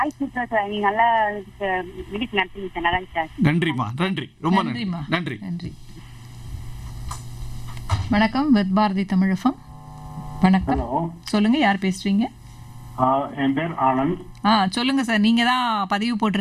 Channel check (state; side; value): identical; both; correlation 1.00